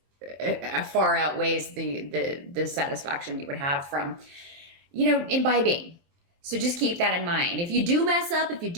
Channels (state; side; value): late; left; 23 ms